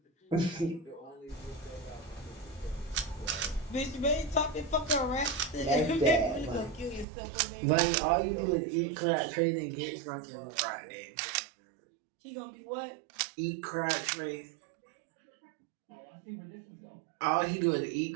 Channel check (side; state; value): left; drops out; at 7.1 s